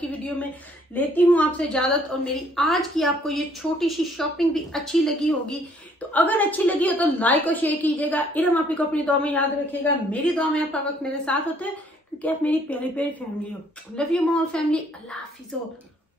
वीडियो में लेती हूँ आपसे इजाजत, और मेरी आज की आपको ये छोटी सी शॉपिंग भी अच्छी लगी होगी। तो अगर अच्छी लगी हो तो लाइक और शेयर कीजिएगा। इरम आप ही को अपनी दुआ में याद रखिएगा। मेरी दुआ में आप हर वक्त मेरे साथ होते हैं क्योंकि आप मेरी प्यारी प्यारी फैमिली हो। Love you more family. अल्लाह हाफिज़।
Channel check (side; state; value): both; normal; correlation 0.63